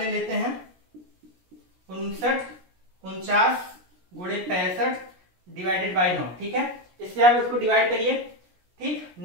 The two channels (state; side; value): late; left; 17 ms